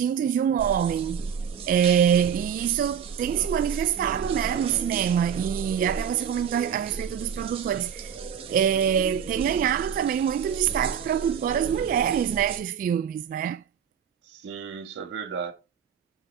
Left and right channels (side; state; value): left; quieter; 8.1 dB